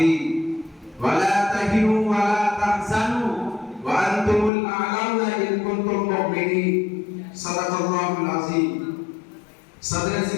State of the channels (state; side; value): drops out; right; at 4.5 s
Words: ولا تهنوا ولا تحزنوا وأنتم الأعلون إن كنتم مؤمنين صدق الله العظيم صدر